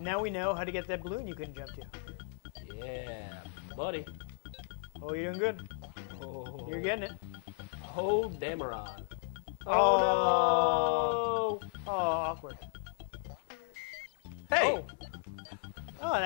we know how to get that balloon you couldn't jump to. Yeah, buddy. Oh, you're doing good. Oh. You're getting it. Oh, Damaron. Oh, no! Oh, awkward. Hey! Oh. Oh, it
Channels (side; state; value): right; silent; digital silence